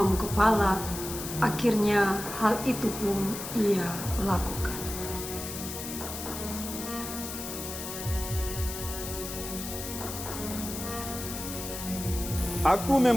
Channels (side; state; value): left; noise; hiss, 8 dB below the sound